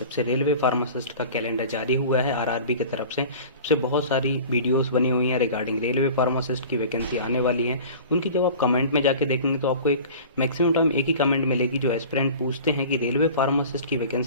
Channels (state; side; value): inverted; both; correlation -0.40